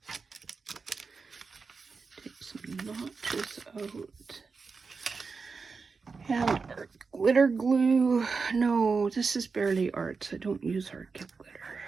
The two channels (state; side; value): quieter; left; 4.8 dB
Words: Notches out. And art glitter glue. No, this is barely arts. I don't use art glitter.